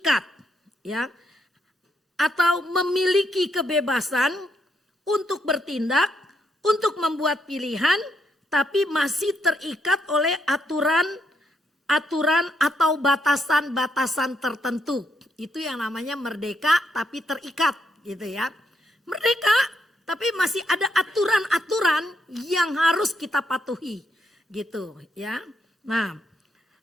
ya, atau memiliki kebebasan untuk bertindak, untuk membuat pilihan, tapi masih terikat oleh aturan atau batasan-batasan tertentu. Itu yang namanya merdeka tapi terikat gitu ya. Merdeka tapi masih ada aturan-aturan yang harus kita patuhi gitu ya. Nah,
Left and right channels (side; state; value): both; normal; correlation 0.77